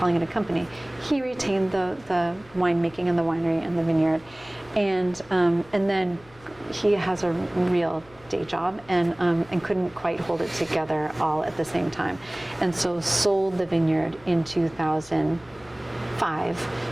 it a company. He retained the winemaking and the winery and the vineyard, and then he has a real day job and couldn't quite hold it together all at the same time, and so sold the vineyard in 2005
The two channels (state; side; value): noise; left; hum, 25 dB below the sound